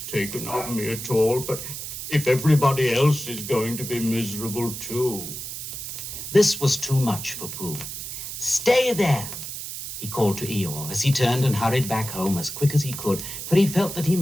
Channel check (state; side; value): noise; right; hiss, 7 dB below the sound